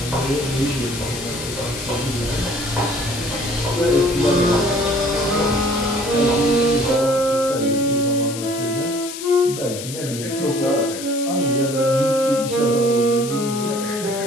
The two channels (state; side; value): noise; left; hiss, 10 dB below the sound